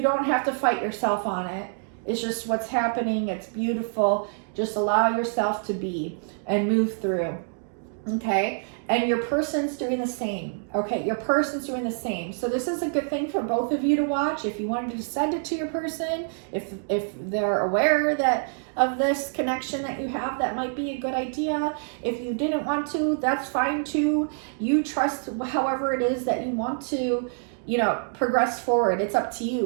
don't have to fight yourself on it. It's just what's happening. It's beautiful. Just allow yourself to be and move through. Okay, and your person's doing the same. Okay, your person's doing the same. So this is a good thing for both of you to watch. If you wanted to send it to your person, if they're aware that of this connection that you have, that might be a good idea. If you didn't want to, that's fine too. You trust however it is that you want to, progress forward. It's up to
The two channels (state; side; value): silent; left; digital silence